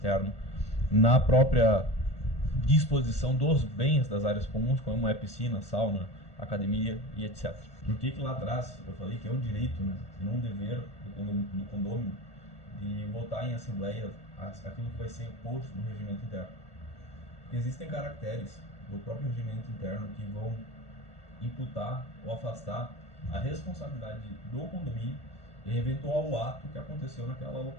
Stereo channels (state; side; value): late; right; 1.1 ms